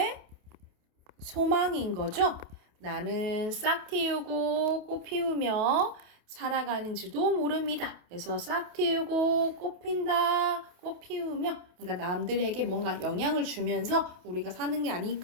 소망인 거죠. 나는 싹 틔우고 꽃 피우며 살아가는지도 모릅니다. 그래서 싹 틔우고 꽃 핀다, 꽃 피우며 그러니까 남들에게 뭔가 영향을 주면서 우리가 사는 게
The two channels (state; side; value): late; left; 28 ms